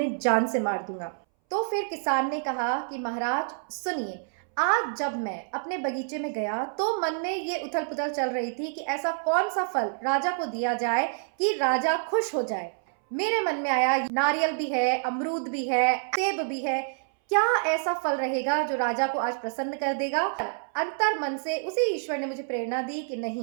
जान से मार दूंगा। तो फिर किसान ने कहा कि महाराज सुनिए, आज जब मैं अपने बगीचे में गया तो मन में ये उथल पुथल चल रही थी कि ऐसा कौन सा फल राजा को दिया जाए कि राजा खुश हो जाए। मेरे मन में आया, नारियल भी है, अमरूद भी है, सेब भी है, क्या ऐसा फल रहेगा जो राजा को आज प्रसन्न कर देगा। अंतर मन से उसी ईश्वर ने मुझे प्रेरणा दी कि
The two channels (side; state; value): left; silent; 60 dB below the other